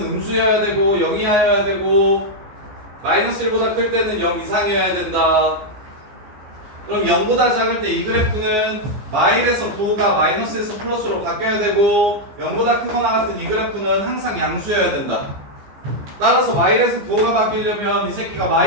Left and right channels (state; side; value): late; left; 15 ms